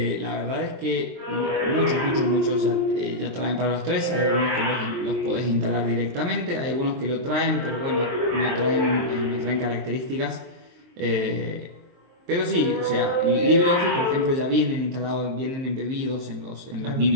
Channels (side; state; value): left; late; 23 ms